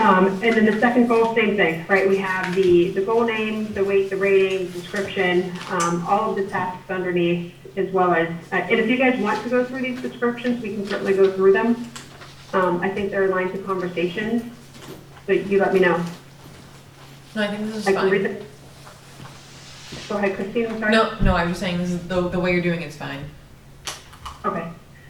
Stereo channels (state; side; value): identical; both; correlation 1.00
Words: then the second goal, same thing, right? We have the goal name, the weight, the rating, description, all of the tasks underneath, as well as, and if you guys want to go through these descriptions, we can certainly go through them. I think they're lines of conversations, so you let me know. No, I think this is I can read fine. them. Go ahead, Christine, I'm sorry. No, I was saying this is the way you're doing it's fine. Okay.